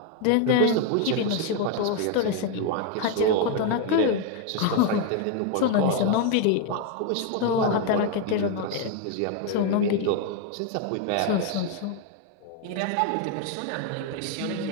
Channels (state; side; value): different; both; correlation 0.01